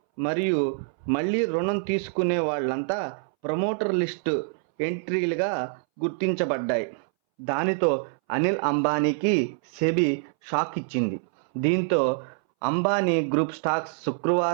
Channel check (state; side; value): silent; left; 61 dB below the other